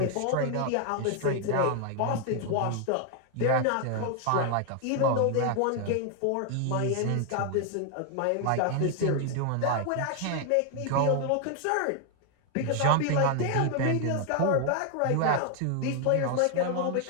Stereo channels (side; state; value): both; different; correlation 0.00